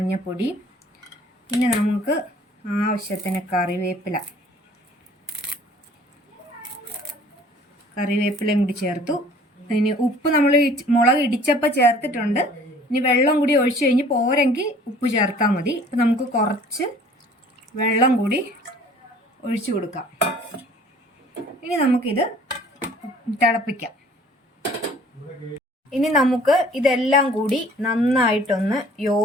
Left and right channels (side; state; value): both; normal; correlation 0.52